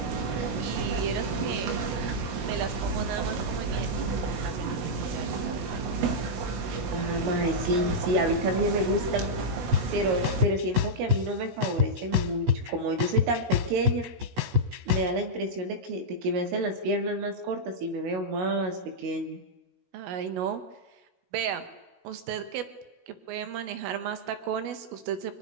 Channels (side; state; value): left; late; 16 ms